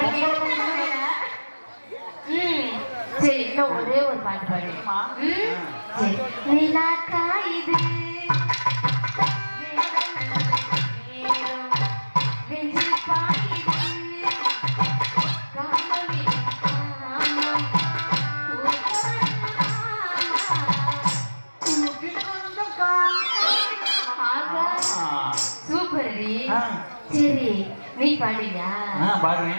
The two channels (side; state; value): both; inverted; correlation -1.00